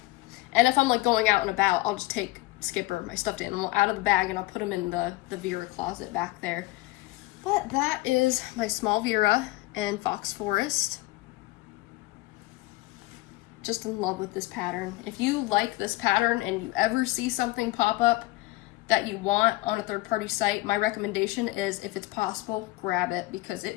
and if I'm like going out and about, I'll just take Skipper, my stuffed animal, out of the bag, and I'll put him in the Vera closet back there. But that is my small Vera and Fox Forest. Just in love with this pattern. If you like this pattern and you ever see something pop up that you want on a third-party site, my recommendation is, if it's possible, grab it, because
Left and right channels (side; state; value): right; quieter; 20.1 dB